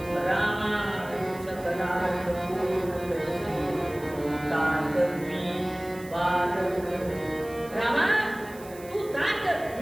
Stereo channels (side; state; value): right; noise; hiss, 20 dB below the sound